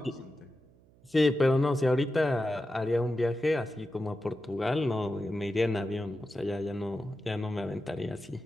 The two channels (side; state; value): right; noise; hum, 28 dB below the sound